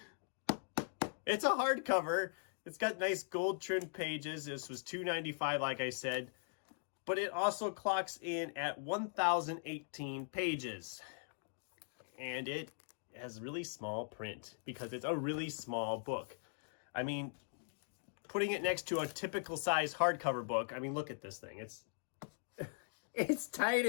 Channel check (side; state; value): right; silent; digital silence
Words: a hardcover. It's got nice gold trimmed pages. This was $2.95, like I said, but it also clocks in at 1,018 pages, and it has really small print because it's a really small book. I mean, putting it next to a typical size hardcover book, I mean, look at this thing. It's